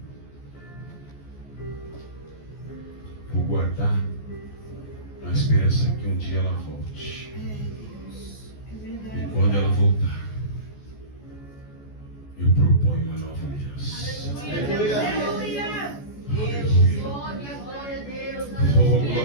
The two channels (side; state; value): right; late; 14 ms